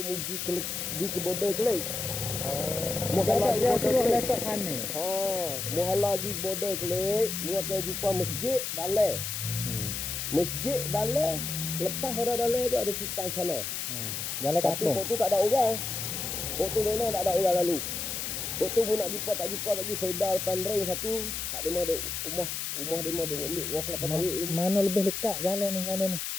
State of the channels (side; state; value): left; noise; hiss, 3 dB below the sound